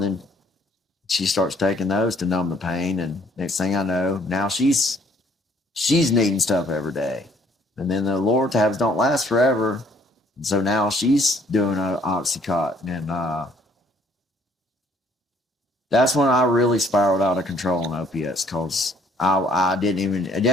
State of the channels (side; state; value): both; normal; correlation 0.62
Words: she starts taking those to numb the pain, and next thing I know, now she's needing stuff every day. And then the Loratabs don't last forever. And so now she's doing an Oxycontin. And that's when I really spiraled out of control on opiates, because I didn't